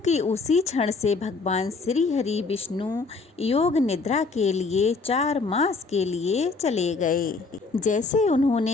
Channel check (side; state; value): right; quieter; 4.1 dB